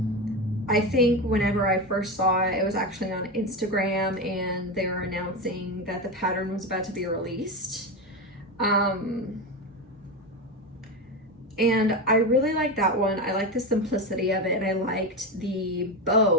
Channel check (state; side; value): normal; both; correlation 0.18